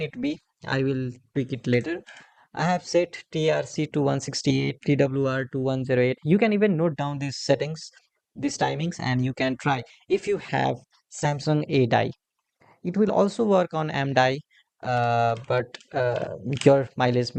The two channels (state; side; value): identical; both; correlation 1.00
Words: it be. I will tweak it later. I have set TRC to 168, TWR to 108. You can even note down these settings, these timings, and you can try. If you have Samsung A die, it will also work on M die, but your mileage